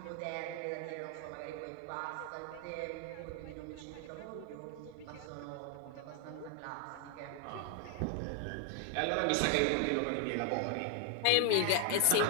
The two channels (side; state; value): both; different; correlation 0.00